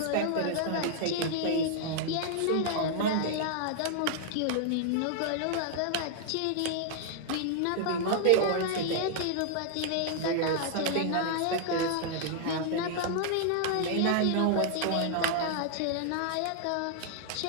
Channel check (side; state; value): both; different; correlation -0.01